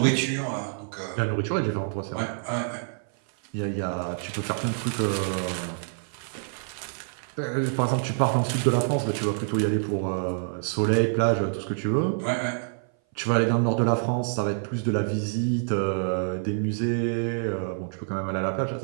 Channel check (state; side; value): silent; left; 58 dB below the other